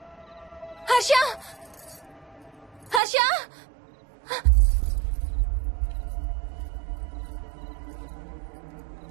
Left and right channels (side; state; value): left; drops out; at 3.0 s